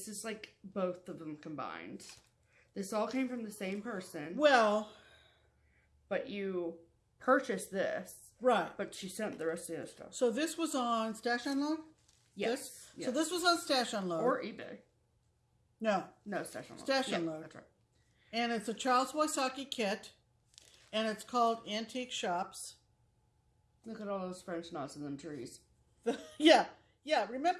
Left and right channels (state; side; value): identical; both; correlation 1.00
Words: is like both of them combined. This all came from the same person. Well... But you purchased this. Right. But she sent the rest of the other stuff. So this was on Stash Unload? Yes. So this was on Stash Unload. Or eBay. No. No, Stash Unload. Stash Yeah, Unload. that's right. And it's a Charles Wysocki kit. And it's called Antique Shops. Look at all those French knots in them trees. Yeah.